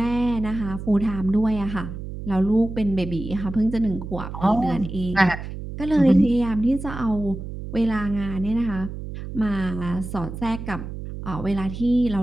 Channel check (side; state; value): right; noise; hum, 9 dB below the sound